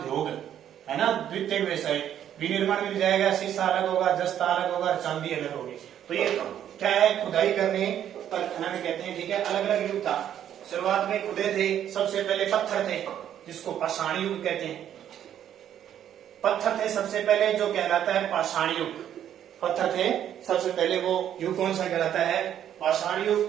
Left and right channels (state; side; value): quieter; left; 10.3 dB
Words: है ना, द्वितीय व्यवसाय, विनिर्माण मिल जाएगा। शीशा अलग होगा, जस्ता अलग होगा, चांदी अलग होगी। तो ये क्या है, खुदाई करने पर खनन कहते हैं। ठीक है, अलग अलग युग था, शुरुआत में खुदे थे, सबसे पहले पत्थर थे, जिसको पाषाण युग कहते हैं। पत्थर थे सबसे पहले, जो कहलाता है पाषाण युग। पत्थर थे सबसे पहले, वो युग कौन सा कहलाता है, पाषाण युग।